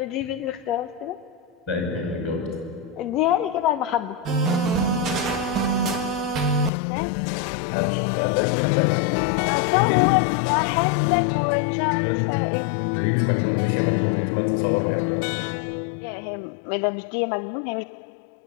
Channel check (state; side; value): drops out; right; at 6.7 s